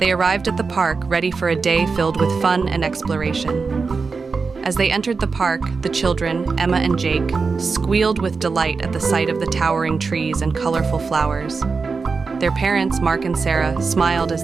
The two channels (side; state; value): left; quieter; 4.7 dB